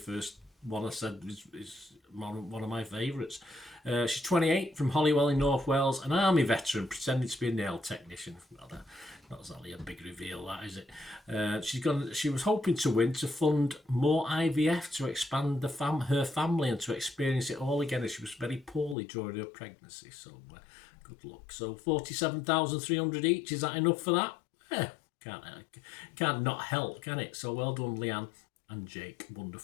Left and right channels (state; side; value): drops out; right; at 18.9 s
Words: one I said is one of my favourites. She's 28, from Holywell in North Wales, an army veteran pretending to be a nail technician. Well, not exactly a big reveal, that, is it? She was hoping to win to fund more IVF to expand her family and to experience it all again, as she was very poorly during her pregnancy. So Good luck. So 47,300 each. Is that enough for that? Yeah, can't not help, can it? So well done, Leanne and Jake,